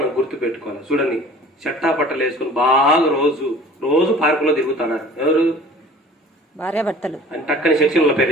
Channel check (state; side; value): normal; both; correlation 0.46